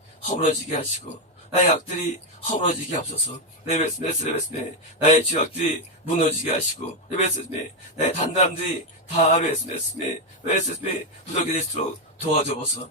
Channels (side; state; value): both; normal; correlation 0.04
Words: 허물어지게 하시고 나의 악들이 허물어지게 하옵소서. 레베스메 나의 죄악들이 무너지게 하시고 레베스메 나의 단단함들이 다 레베스메 부족이 될수록 도와줘보소.